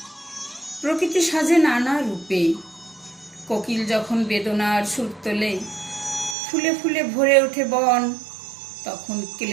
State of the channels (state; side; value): drops out; left; at 6.4 s